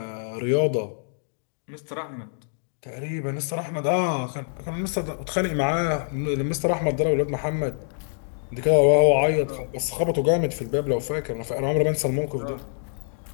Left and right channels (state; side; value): silent; right; digital silence